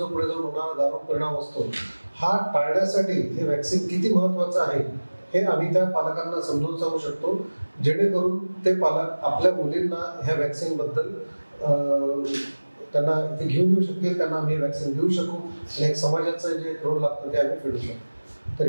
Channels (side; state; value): both; inverted; correlation -1.00